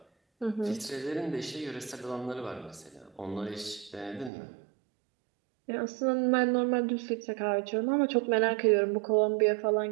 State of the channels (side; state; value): left; drops out; at 4.3 s